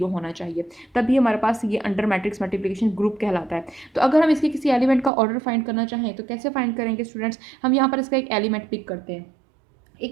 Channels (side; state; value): left; drops out; at 5.1 s